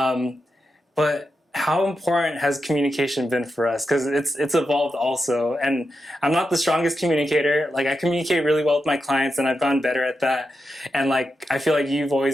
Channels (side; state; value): both; normal; correlation 0.88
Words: But how important has communication been for us? Because it's evolved also. And I'm not the strongest communicator. Like, I communicate really well with my clients, and I've gotten better at that. And like, I feel like you've